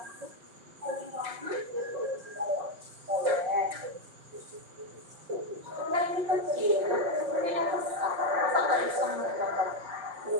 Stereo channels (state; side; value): late; left; 5.5 ms